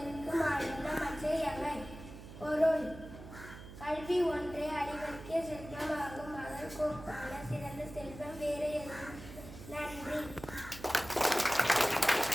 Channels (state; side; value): noise; right; hum, 14 dB below the sound